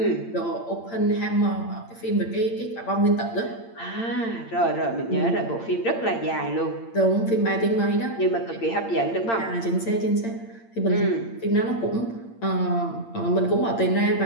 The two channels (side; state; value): right; late; 8.8 ms